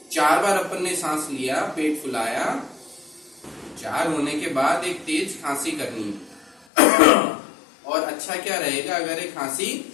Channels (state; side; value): drops out; right; at 6.6 s